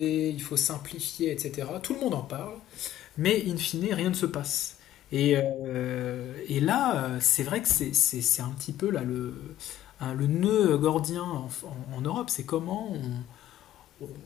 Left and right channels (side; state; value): right; quieter; 12.8 dB